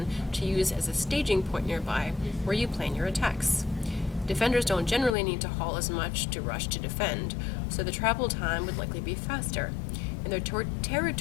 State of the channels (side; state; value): right; drops out; at 5.2 s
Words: to use as a staging point nearby where you plan your attacks. Defenders don't generally need to haul as much to rush to defend, so the travel time would likely be faster, and their